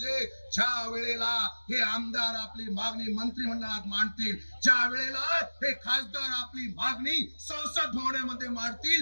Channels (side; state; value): both; inverted; correlation -1.00